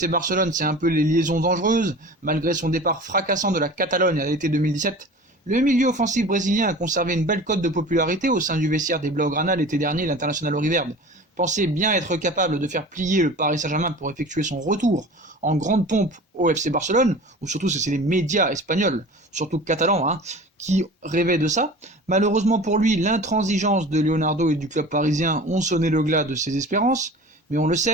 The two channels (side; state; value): both; normal; correlation 0.39